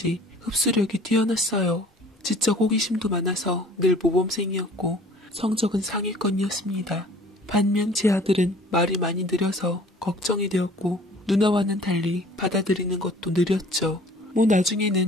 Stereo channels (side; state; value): both; normal; correlation 0.50